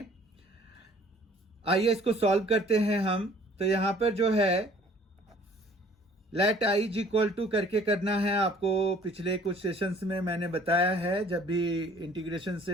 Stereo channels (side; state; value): both; normal; correlation 0.55